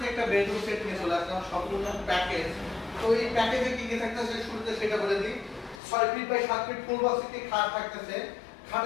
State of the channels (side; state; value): right; drops out; at 5.8 s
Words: একটা বেডরুম সেট নিয়ে চলে আসলাম, সম্পূর্ণ প্যাকেজ। তো এই প্যাকেজে কি কি থাকতেছে শুরুতে সেটা বলে দিই। 6 feet by 7 feet full box একটি খাট থাকতেছে,